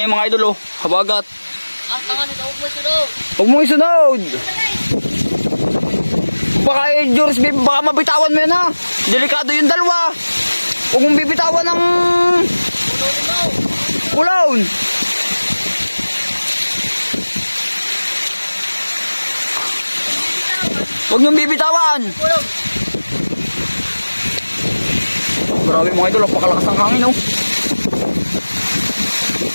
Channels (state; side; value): inverted; both; correlation -1.00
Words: mga idol oh. Habagat. Ang tanga nito, huwag mo sunod. Huwag mo isunod. Baka George, baka mabitawan mo yan ha. Delikado yung dalawa. Huwag mong bibitawan ng ulawon. Huwag niyong bibitawan. Grabe mga idol, napakalakas ng hangin oh.